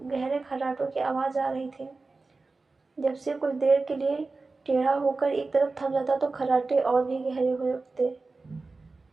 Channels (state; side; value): quieter; left; 3.8 dB